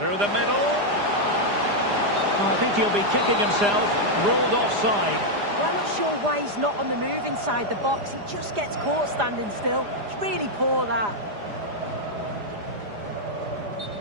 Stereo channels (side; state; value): left; late; 4.9 ms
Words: the middle. Oh, I think he'll be kicking himself. Ruled offside. Well, I'm not sure why he's not on the move inside the box. He just gets caught standing still. It's really poor, that.